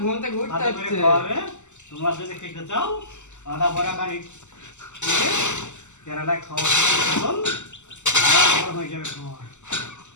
ঘুম থেকে উঠতে হচ্ছে। তোমরা যদি খেতে চাও আদা বড়া গাড়ি কেরালায় খাওয়া হয়ে যাবে।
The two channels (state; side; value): late; right; 0.84 ms